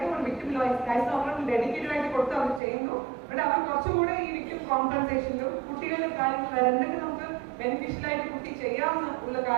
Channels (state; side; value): drops out; left; at 2.6 s